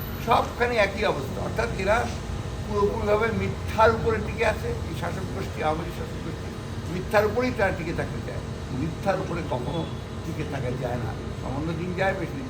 সবখানে একই অবস্থা, অর্থাৎ এরা পুরোপুরিভাবে মিথ্যার উপরে টিকে আছে। এই শাসক গোষ্ঠী, আওয়ামী লীগ শাসক গোষ্ঠী মিথ্যার উপরেই তারা টিকে থাকতে চায়। মিথ্যার উপরে কখনো টিকে থাকা যায় না, সামান্য দিন যায়, বেশি দিন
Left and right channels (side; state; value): both; identical; correlation 1.00